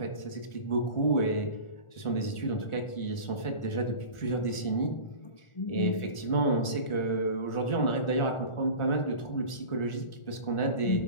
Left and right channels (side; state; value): right; late; 1.4 ms